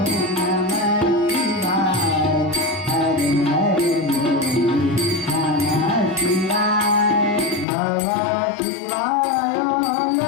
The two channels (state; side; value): drops out; right; at 7.7 s